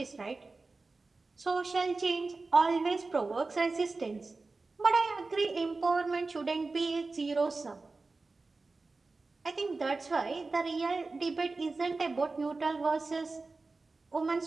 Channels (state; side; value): quieter; left; 3.7 dB